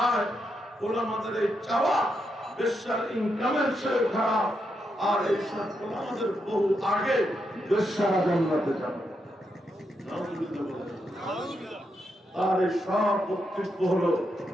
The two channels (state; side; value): normal; both; correlation 0.82